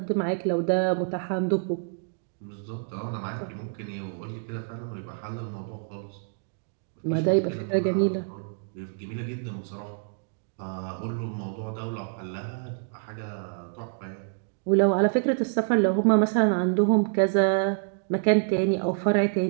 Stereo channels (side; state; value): left; silent; digital silence